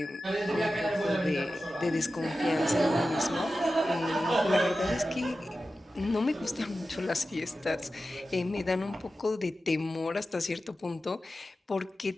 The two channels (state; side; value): normal; both; correlation 0.93